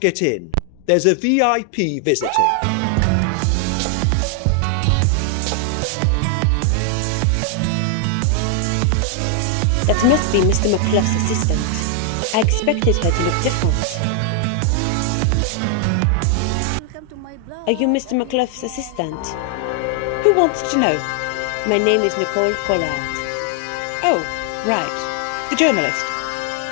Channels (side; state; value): both; different; correlation 0.00